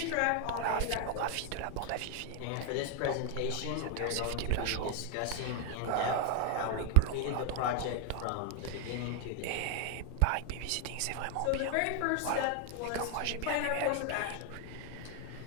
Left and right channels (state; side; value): different; both; correlation 0.01